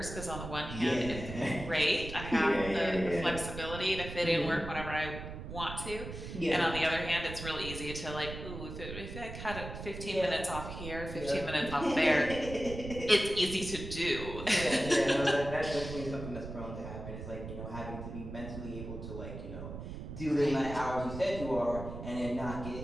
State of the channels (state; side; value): noise; right; rumble, 9 dB below the sound